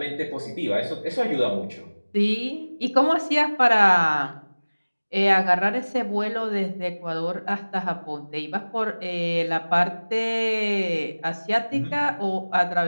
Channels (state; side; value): inverted; both; correlation -1.00